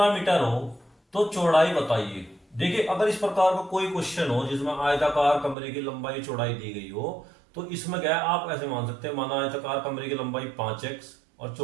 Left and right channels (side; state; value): left; drops out; at 5.6 s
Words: मीटर हो तो चौड़ाई बताइए। देखिए अगर इस प्रकार का कोई क्वेश्चन हो जिसमें आयताकार कमरे की लंबाई चौड़ाई दी गई हो तो इसमें क्या है, आप ऐसे मान सकते हैं, माना आयताकार कमरे की लंबाई 5x और